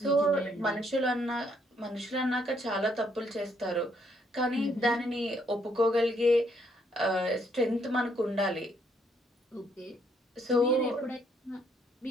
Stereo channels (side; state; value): both; normal; correlation 0.70